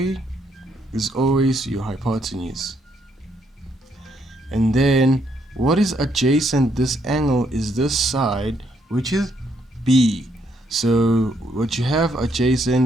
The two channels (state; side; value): normal; both; correlation 0.73